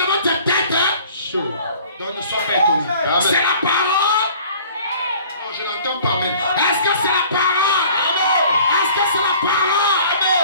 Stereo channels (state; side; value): inverted; both; correlation -0.51